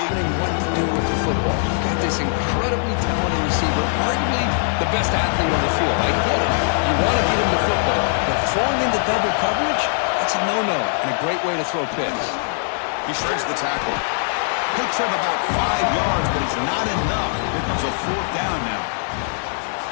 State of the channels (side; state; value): right; silent; 65 dB below the other